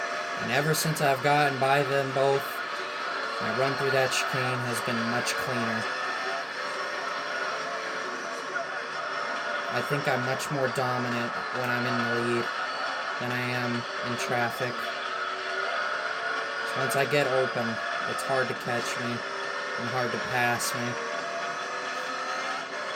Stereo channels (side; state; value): both; identical; correlation 1.00